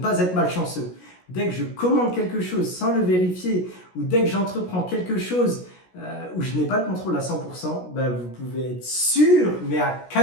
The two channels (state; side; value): late; right; 16 ms